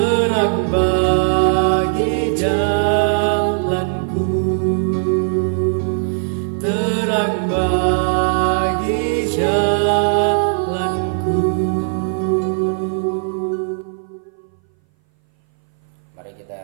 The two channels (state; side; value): silent; left; 60 dB below the other